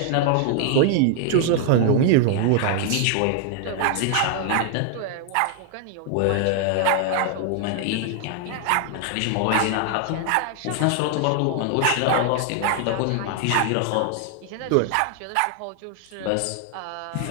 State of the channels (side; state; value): both; different; correlation 0.00